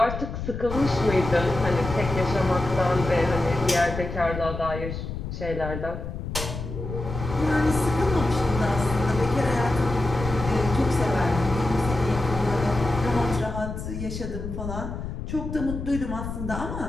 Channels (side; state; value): left; noise; rumble, 7 dB below the sound